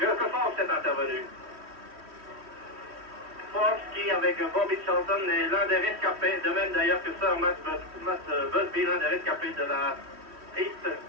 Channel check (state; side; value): late; left; 3.1 ms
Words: Fox est intervenu. Fox qui, avec Bobby Charlton, est l'un des rescapés, de même d'ailleurs que Sir Matt Busby, l'un des rescapés de la piste